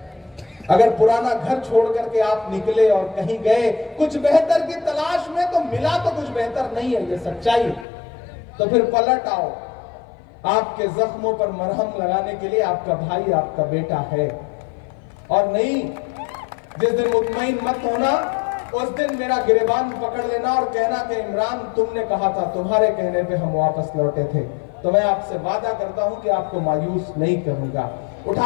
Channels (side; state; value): right; drops out; at 7.9 s